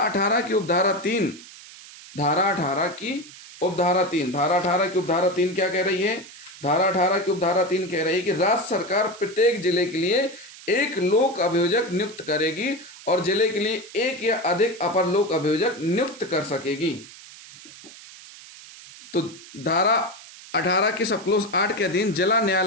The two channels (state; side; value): noise; right; hiss, 18 dB below the sound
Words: की उपधारा 3, धारा 18 की उपधारा 3, धारा 18 की उपधारा 3 क्या कह रही है? धारा 18 की उपधारा 3 कह रही है कि राज्य सरकार प्रत्येक जिले के लिए एक लोक अभियोजक नियुक्त करेगी और जिले के लिए एक या अधिक अपर लोक अभियोजक नियुक्त कर सकेगी। तो धारा 18 के सब क्लोज 8 के अधीन जिला